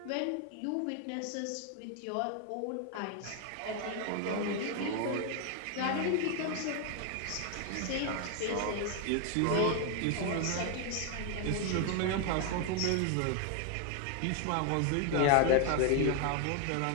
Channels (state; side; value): different; both; correlation 0.01